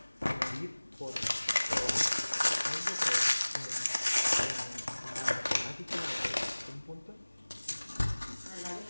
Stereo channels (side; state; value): both; inverted; correlation -1.00